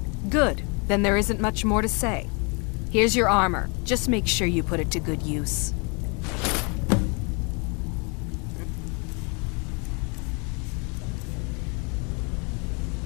Good. Then there isn't much more to say. Here's your armor. Just make sure you put it to good use.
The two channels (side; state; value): right; quieter; 32.9 dB